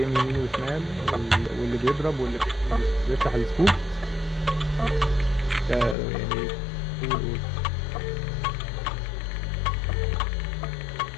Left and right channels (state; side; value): drops out; right; at 6.0 s